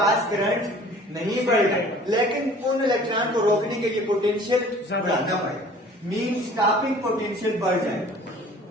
करंट नहीं बढ़ेगा, लेकिन उन इलेक्ट्रॉन को रोकने के लिए पोटेंशियल बढ़ाना पड़ेगा, मीन स्टॉपिंग पोटेंशियल बढ़ जाएगा।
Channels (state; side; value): normal; both; correlation 0.49